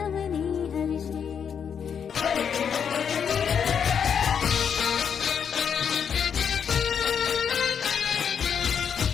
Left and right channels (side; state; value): right; quieter; 7.4 dB